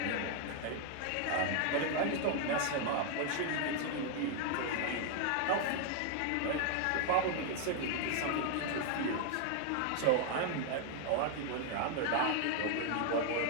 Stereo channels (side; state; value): both; different; correlation 0.00